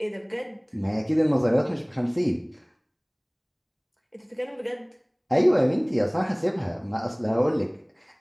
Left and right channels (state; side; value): identical; both; correlation 1.00